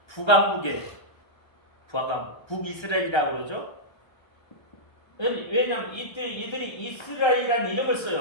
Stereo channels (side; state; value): right; late; 1.3 ms